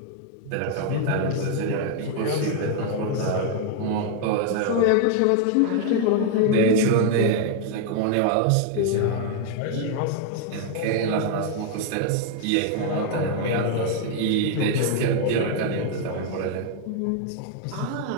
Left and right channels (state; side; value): different; both; correlation 0.00